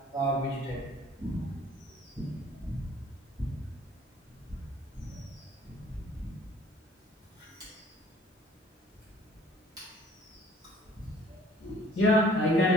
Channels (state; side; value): normal; both; correlation 0.55